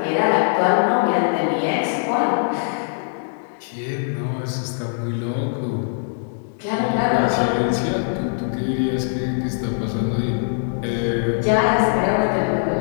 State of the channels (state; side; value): silent; right; digital silence